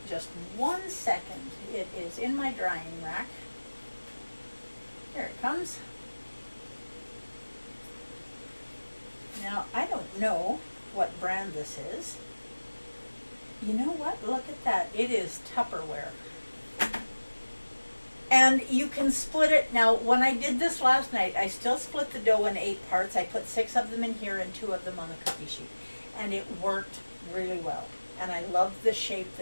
Just 1 second. It is in my drying rack. Here it comes. Now, I don't know what brand this is. You know what? Look at that. It is Tupperware. And you can split it. Now, when I did this last night, I still split the dough in 8 parts. I put 6 of them in here and 2 of them on the cookie sheet. And it worked really well. And I love the shape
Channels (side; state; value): both; inverted; correlation -1.00